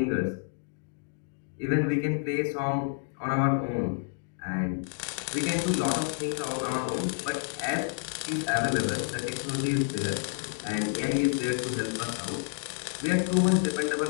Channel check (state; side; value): silent; right; digital silence